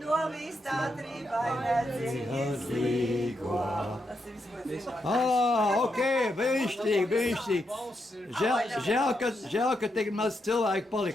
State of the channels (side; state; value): both; normal; correlation 0.82